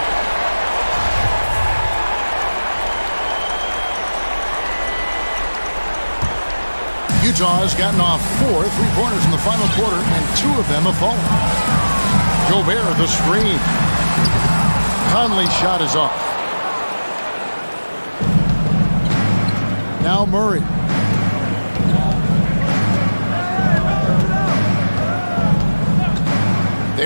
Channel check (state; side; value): inverted; both; correlation -1.00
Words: Utah has gotten off 4 3-pointers in the final quarter, and 2 of them have fallen. Gobert, the screen. Conley's shot is off. Now Murray.